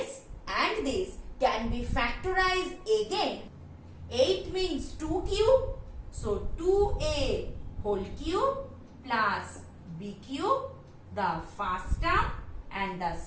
and this can be factorized again. 8 means 2 cube. So 2a whole cube plus b cube, the first term, and the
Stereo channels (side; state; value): both; identical; correlation 1.00